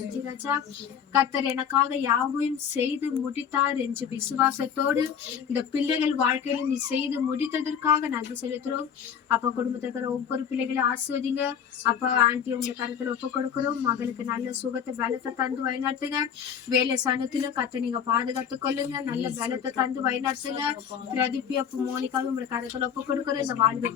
ராஜா. கர்த்தர் எனக்காக யாவையும் செய்து முடித்தார் என்று விசுவாசத்தோடு இந்த பிள்ளைகள் வாழ்க்கையில நீ செய்து முடித்ததற்காக நன்றி செலுத்துறோம். அப்பா குடும்பத்துல இருக்கிற ஒவ்வொரு பிள்ளைகளையும் ஆசிர்வதிங்க. அப்பா ஆண்டி உங்க கருத்துல ஒப்பு கொடுக்கிறோம். மகளுக்கு நல்ல சுகத்தை பலத்தை தந்து வழிநடத்துங்க. வேலை சனத்திலும் கத்தை நீங்க பாதுகாத்துக் கொள்ளுங்க. நல்ல பலத்தை தந்து வழிநடத்துங்க. பிரதிபி அப்ப மோனிக்காவும் உங்க கருத்துல ஒப்பு கொடுக்கிறோம். இந்த வாழ்வு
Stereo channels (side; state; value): right; quieter; 8.0 dB